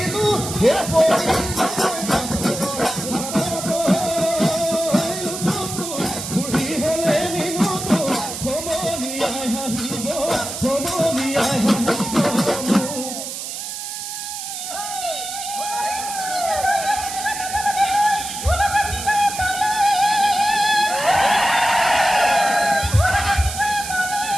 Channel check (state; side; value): noise; right; hiss, 7 dB below the sound